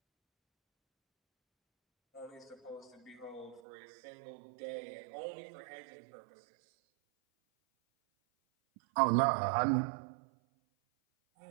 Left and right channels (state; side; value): drops out; left; at 3.6 s